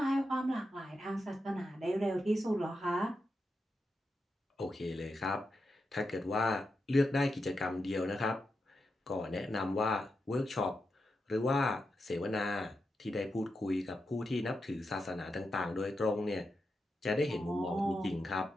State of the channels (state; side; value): normal; both; correlation 0.87